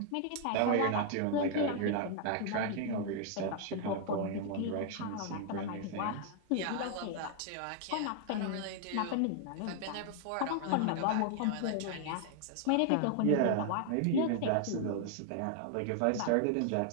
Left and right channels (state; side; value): different; both; correlation 0.00